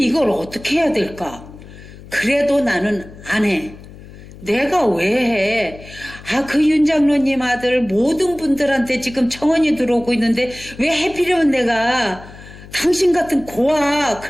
이걸 어떻게 해야 될까? 그래도 나는 안 해. 내가 왜 해? 그 윤장로님 아들 모든 분들한테 지금 청원이 들어오고 있는데 왜 하필이면 내가 당신 같은 고아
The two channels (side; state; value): left; noise; hum, 18 dB below the sound